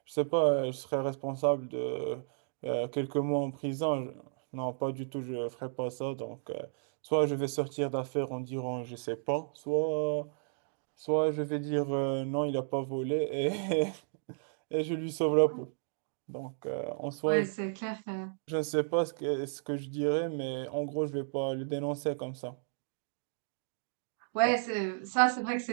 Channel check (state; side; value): silent; left; digital silence